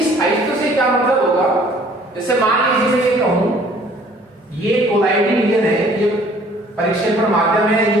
स्थायित्व से क्या मतलब होगा? जैसे मान लीजिए मैं ये कहूं ये कोलॉइडी विलयन है, ये परिक्षेपण माध्यम है,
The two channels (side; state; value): both; normal; correlation 0.56